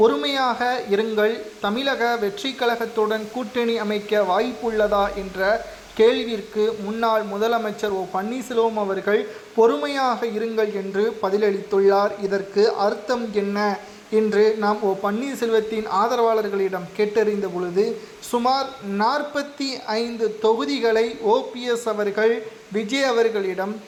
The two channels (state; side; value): identical; both; correlation 1.00